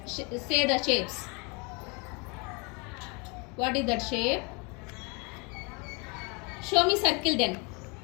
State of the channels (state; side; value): quieter; right; 31.2 dB